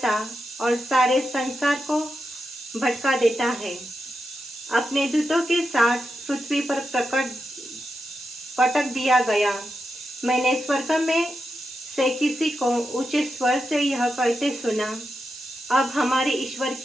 और सारे संसार को भटका देता है, अपने दूतों के साथ पृथ्वी पर पटक दिया गया। मैंने स्वर्ग में से किसी को ऊंचे स्वर से यह कहते सुना, अब हमारे ईश्वर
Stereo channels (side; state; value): right; noise; hiss, 16 dB below the sound